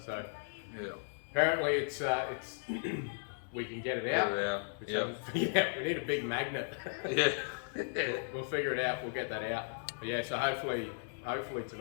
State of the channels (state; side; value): silent; right; digital silence